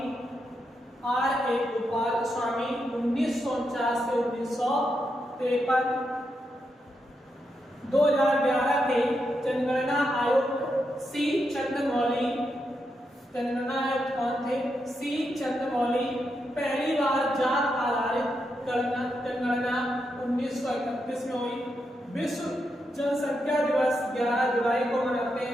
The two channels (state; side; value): normal; both; correlation 0.84